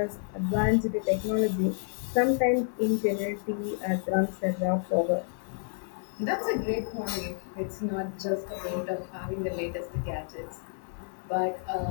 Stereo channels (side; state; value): right; silent; digital silence